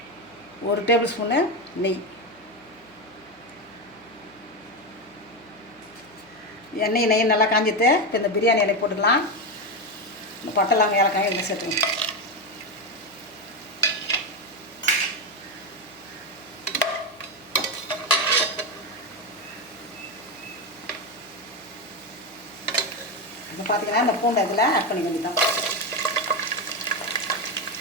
1 டேபிள் ஸ்பூனு நெய். நெய் நல்லா காஞ்சிட்டு இப்போ இந்த பிரியாணி இலை போட்டுக்கலாம். இந்த பட்டை லவங்கம் ஏலக்காய் இதில் சேர்த்துக்கலாம். இப்போ பார்த்தீங்கன்னா இந்த பூண்டை இதில் ஆட் பண்ணி வேண்டியதான்.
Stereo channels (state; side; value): noise; right; hum, 28 dB below the sound